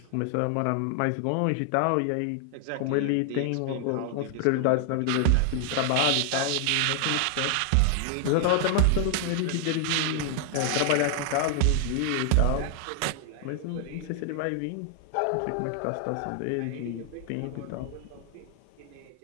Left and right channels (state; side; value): different; both; correlation 0.00